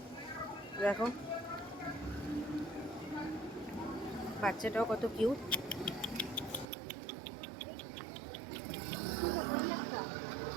দেখো বাচ্চাটাও কত কিউট।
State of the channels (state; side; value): drops out; left; at 6.7 s